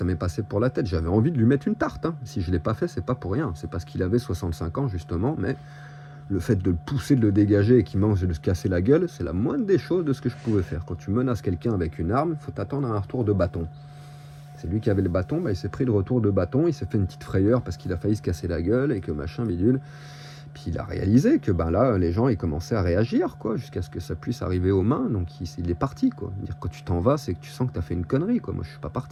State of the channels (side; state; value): both; identical; correlation 1.00